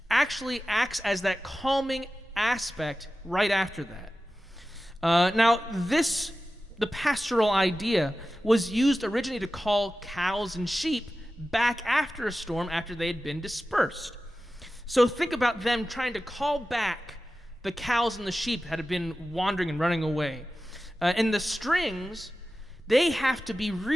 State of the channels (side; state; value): both; normal; correlation 0.94